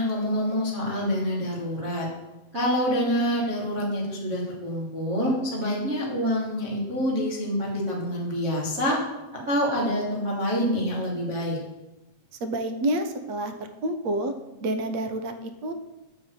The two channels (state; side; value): late; left; 7.4 ms